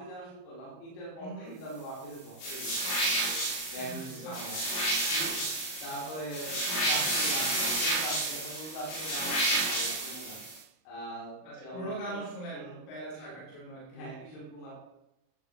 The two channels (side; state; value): right; late; 38 ms